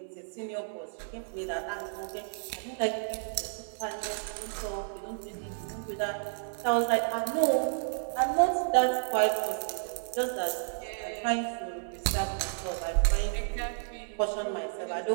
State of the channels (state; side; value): silent; left; digital silence